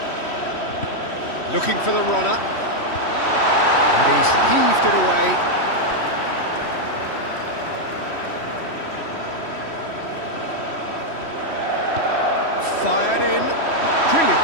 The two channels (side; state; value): right; late; 3.1 ms